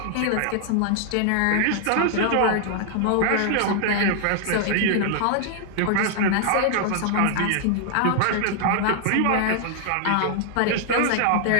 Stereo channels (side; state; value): both; different; correlation 0.00